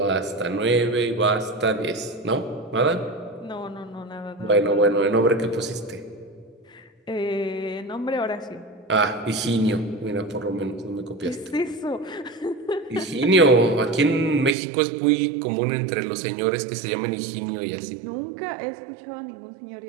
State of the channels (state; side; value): drops out; left; at 14.6 s